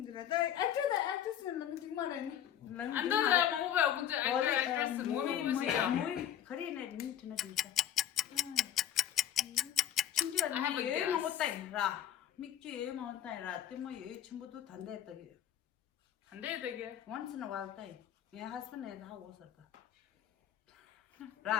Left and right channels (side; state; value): right; quieter; 10.5 dB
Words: actress는 너무 정말에. 안 돼. movie actress movie movie kare ne ni tuna 진짜. 진짜 나 여행 먹었다 이라. 맥주 여행 먹었다 이라. 때문에 여행 전부도 단대했다게. 단대했다게. Once in a while day. My husband is how was it?